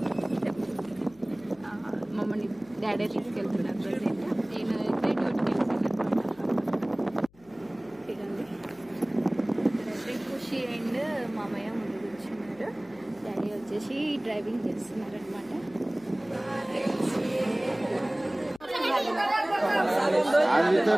మమ్మల్ని డాడీ తీసుకెళ్తున్నారు. ప్రజెంట్ నేను అయితే డ్యూటీకి వెళ్తాను అనమాట. ఖుషి అండ్ మామయ్య ముందు కూర్చున్నారు. డాడీ వచ్చేసి డ్రైవింగ్ చేస్తున్నారు అనమాట.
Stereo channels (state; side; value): noise; left; hum, 29 dB below the sound